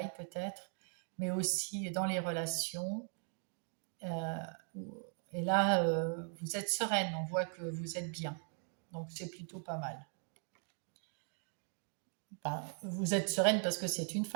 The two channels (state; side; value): silent; left; 52 dB below the other